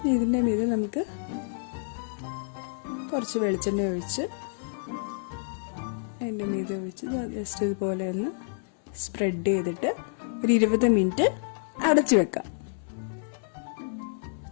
ഇതിൻ്റെ മീതെ നമുക്ക് കുറച്ച് വെളിച്ചെണ്ണ ഒഴിച്ച് അതിൻ്റെ മീതെ ഒഴിച്ച് ജസ്റ്റ് ഇതുപോലെ ഒന്ന് സ്പ്രെഡ് ചെയ്തിട്ട് ഒരു 20 മിനിറ്റ് അടച്ചു വെക്കാം.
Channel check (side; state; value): right; silent; 59 dB below the other